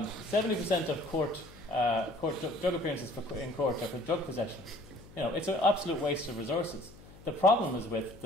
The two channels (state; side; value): noise; left; hum, 20 dB below the sound